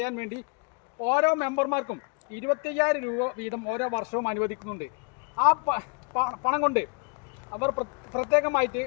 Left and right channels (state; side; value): quieter; right; 35.4 dB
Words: വേണ്ടി ഓരോ മെമ്പർമാർക്കും 25,000 രൂപ വീതം ഓരോ വർഷവും അനുവദിക്കുന്നുണ്ട്. ആ പണം കൊണ്ട് അവർ പ്രത്യേകമായിട്ട്